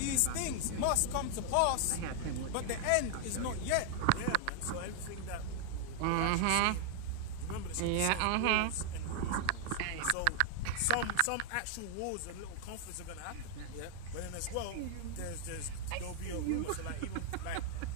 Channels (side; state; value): both; different; correlation 0.00